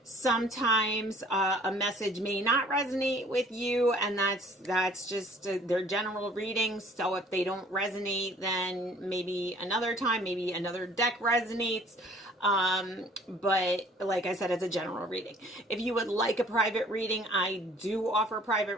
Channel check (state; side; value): normal; both; correlation 0.54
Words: Sometimes a message may not resonate with you, and that's just their general readings. So if they don't resonate, then maybe another time, maybe another deck resonates. But like I said, it's a general reading. If you would like a private reading, I do offer